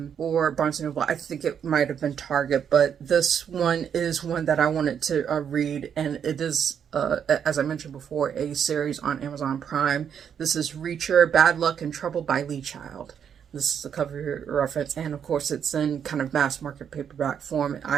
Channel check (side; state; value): left; quieter; 8.0 dB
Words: & Noble. I think it might have been Target, but this one is one that I wanted to read, and it is, as I mentioned before, a series on Amazon Prime. This is Reacher, Bad Luck and Trouble by Lee Child. This is the cover reference, and of course it's in kind of mass market paperback form.